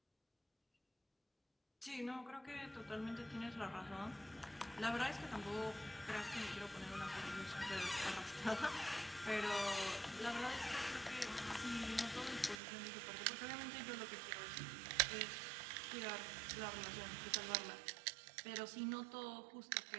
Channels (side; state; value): left; drops out; at 12.6 s